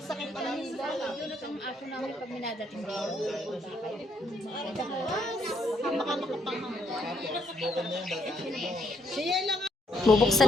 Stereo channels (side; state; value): both; normal; correlation 0.72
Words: pa lang nila. Yun ang aso namin pag minadating dito. Baka makapangang. Siya lang. Bubuksan